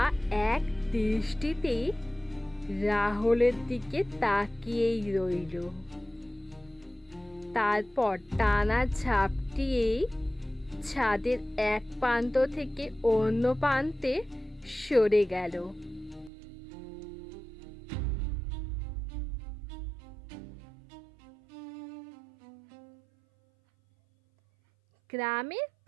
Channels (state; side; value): drops out; left; at 16.3 s